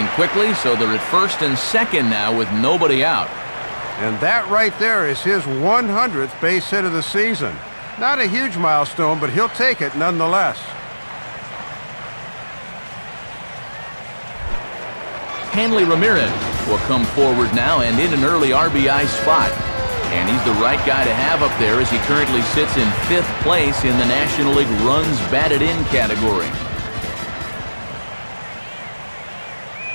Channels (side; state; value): both; inverted; correlation -1.00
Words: quickly, so they're at first and second now with nobody out. And that right there is his 100th base hit of the season. Not a huge milestone, but he'll take it nonetheless. Hanley Ramirez will come forward now and in an early RBI spot. And he's the right guy to have up there as he currently sits in 5th place in the National League runs batted in category.